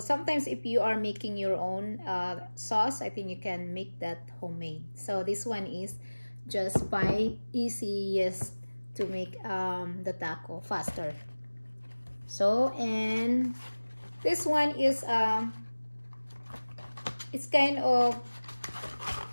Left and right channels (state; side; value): inverted; both; correlation -1.00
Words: if you are making your own sauce, I think you can make that homemade. So this one is just by easiest to make the taco faster. So, and this one is it's kind of